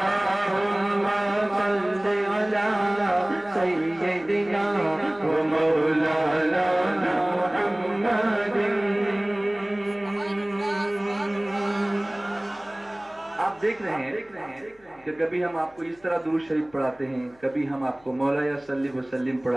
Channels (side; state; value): left; noise; hum, 30 dB below the sound